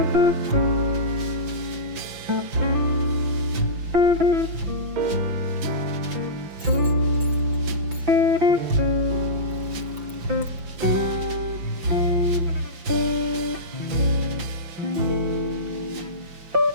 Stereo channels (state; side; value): late; left; 6.0 ms